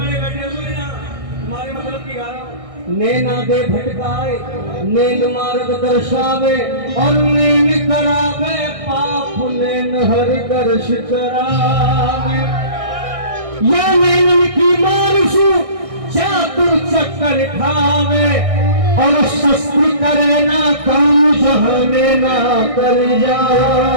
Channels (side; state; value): left; late; 1.6 ms